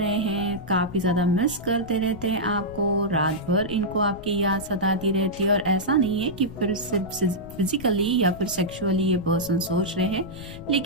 हैं, काफी ज्यादा मिस करते रहते हैं आपको, रात भर इनको आपकी याद सताती रहती है। और ऐसा नहीं है कि फिर सिर्फ फिजिकली या फिर सेक्सुअली ये पर्सन सोच रहे हैं,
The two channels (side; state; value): left; noise; rumble, 15 dB below the sound